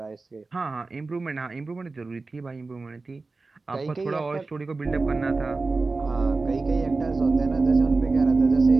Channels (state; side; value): quieter; left; 3.7 dB